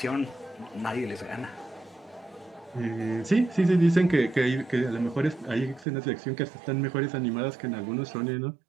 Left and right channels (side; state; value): left; drops out; at 5.9 s